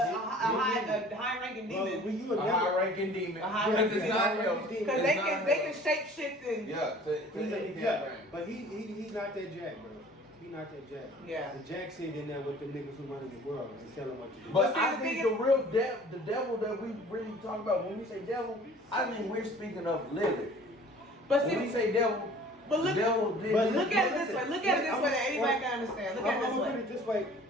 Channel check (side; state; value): both; normal; correlation 0.49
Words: high-ranking demon. A high-ranking demon. Because it's not him. Because they can shape shit and but he's not that Jack, bro. He's not that Jack. Yeah. The Jack sit in there with the niggas who run the world and tell them what to do. But I think the real the devil that we really talk about when we say devil, I mean we're speaking of living. But when we say devil. But look at it this way. Look at it this way that anybody can understand. Look at it this way. I'm gonna put it this way